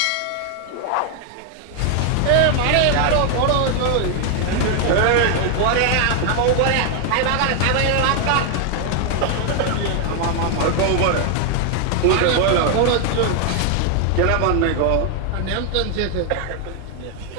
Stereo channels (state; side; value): different; both; correlation 0.00